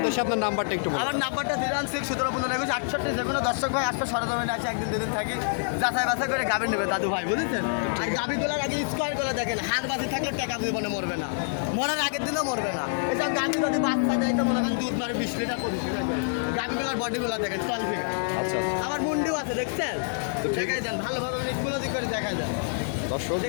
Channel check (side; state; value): right; silent; digital silence